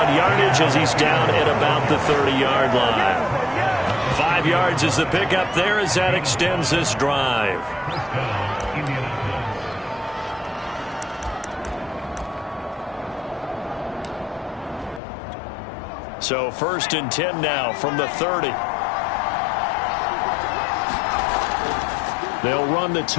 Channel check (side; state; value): right; drops out; at 15.0 s